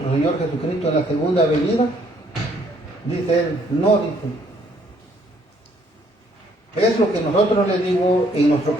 Señor Jesucristo en la segunda venida. Dice él, no, dice. Es lo que nosotros le digo, en nuestro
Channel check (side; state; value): both; normal; correlation 0.65